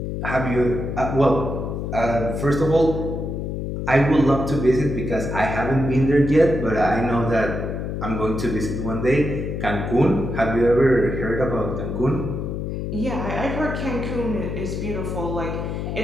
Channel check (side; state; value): left; noise; hum, 4 dB below the sound